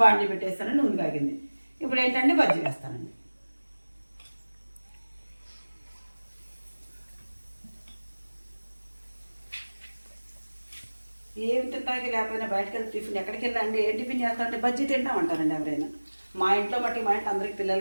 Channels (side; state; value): both; inverted; correlation -1.00